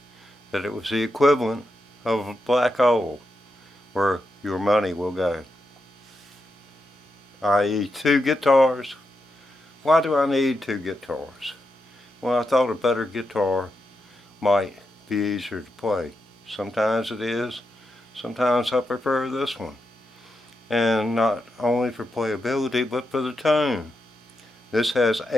that it was the equivalent of a black hole where your money will go, i.e. two guitars. Why do I need two guitars? Well, I thought a better guitar might be easier to play. Sometimes it is. Sometimes I prefer this one. And not only for playability, but for the tone. This has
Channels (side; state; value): both; normal; correlation 0.86